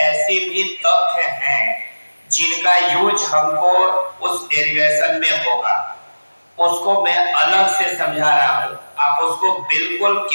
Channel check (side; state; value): both; inverted; correlation -1.00